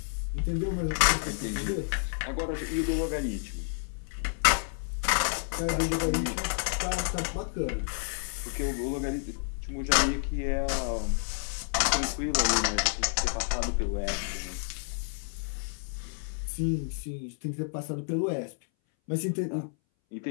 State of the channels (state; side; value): silent; right; 58 dB below the other